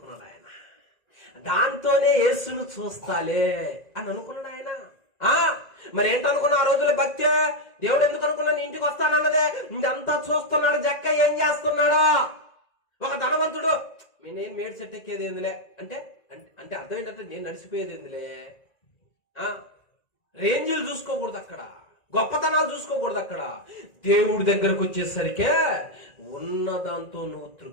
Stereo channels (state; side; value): late; right; 1.9 ms